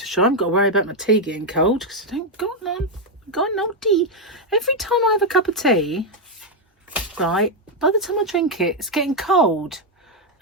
sure, I haven't got to worry about my tea getting cold because I don't got none. Got no tea. Every time I have a cup of tea, right, by the time I drink it, it's getting cold.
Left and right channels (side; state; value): both; normal; correlation 0.01